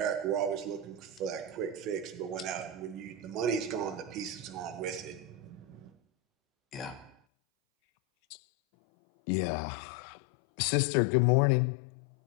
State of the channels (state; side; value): drops out; right; at 7.2 s